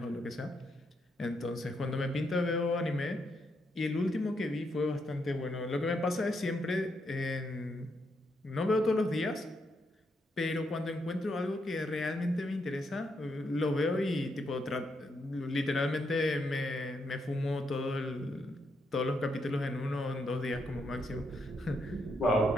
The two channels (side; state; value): both; normal; correlation 0.79